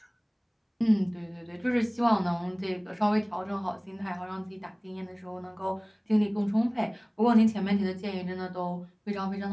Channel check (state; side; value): identical; both; correlation 1.00